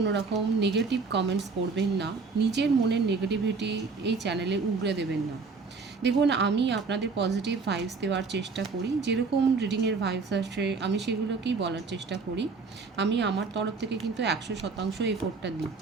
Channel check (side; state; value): left; quieter; 4.5 dB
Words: রকম নেগেটিভ কমেন্টস করবেন না। নিজের মনের নেগেটিভিটি এই চ্যানেলে উগড়ে দেবেন না। দেখুন, আমি আপনাদের পজিটিভ ভাইবস দেওয়ার চেষ্টা করি, যেরকম রিডিংয়ের ভাইবস আসে আমি সেগুলোকেই বলার চেষ্টা করি। আমি আমার তরফ থেকে কিন্তু 100% এফোর্টটা দিই।